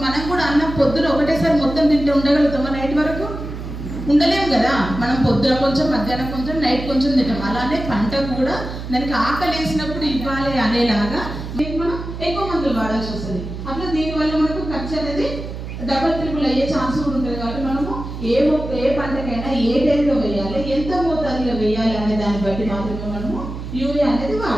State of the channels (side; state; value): right; noise; hum, 8 dB below the sound